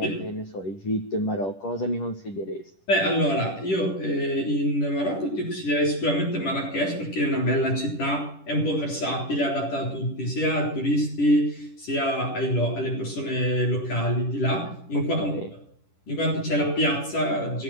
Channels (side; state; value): right; late; 10 ms